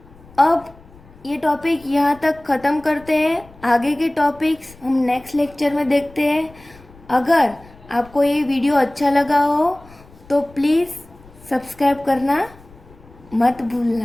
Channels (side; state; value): left; noise; rumble, 24 dB below the sound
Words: अब ये टॉपिक यहाँ तक ख़त्म करते हैं, आगे के टॉपिक्स हम नेक्स्ट लेक्चर में देखते हैं। अगर आपको ये वीडियो अच्छा लगा हो तो प्लीज़ सब्सक्राइब करना मत